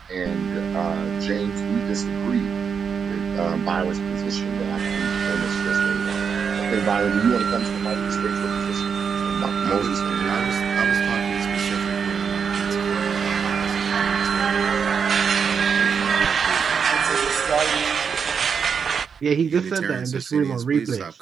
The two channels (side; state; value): left; quieter; 6.5 dB